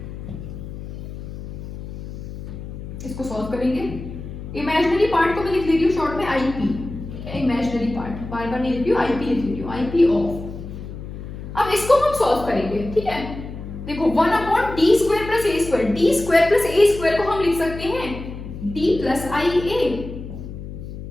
इसको सॉल्व करेंगे, इमेजिनरी पार्ट को मैं लिख ले रही हूँ शॉर्ट में आईपी, इमेजिनरी पार्ट, बार बार नहीं लिख रही हूँ, आईपी लिख रही हूँ, आईपी ऑफ। अब इसको हम सॉल्व करेंगे, ठीक है। देखो 1 upon D square plus A square, D square plus A square को हम लिख सकते हैं D plus I A,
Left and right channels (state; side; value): noise; left; hum, 10 dB below the sound